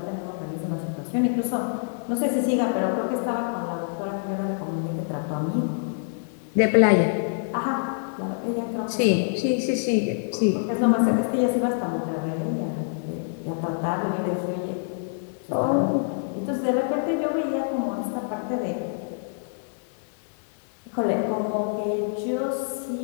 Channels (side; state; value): right; silent; digital silence